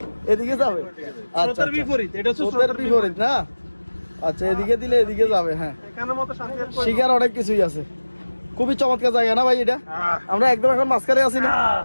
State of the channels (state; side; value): inverted; both; correlation -1.00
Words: এদিকে যাবে। আচ্ছা স্রোতের আচ্ছা, বিপরীত, এটা হচ্ছে স্রোতের বিপরীত না? আচ্ছা, এদিকে দিলে এদিকে যাবে। হ্যাঁ, এখানের মতো শান্তি আর কই শিকার অনেক কিছুই আছে। খুবই চমৎকার জায়গা না ভাই এটা? আমরা একদম এখন মাঝখানে আছি না?